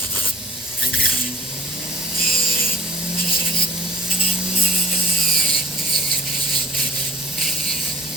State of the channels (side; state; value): both; normal; correlation 0.47